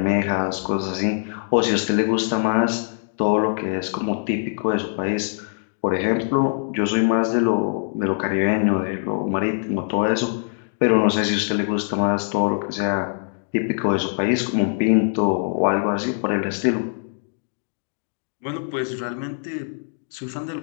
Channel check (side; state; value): right; silent; digital silence